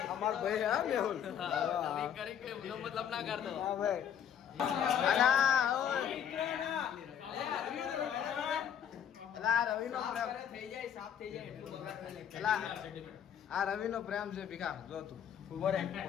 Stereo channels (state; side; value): quieter; right; 8.9 dB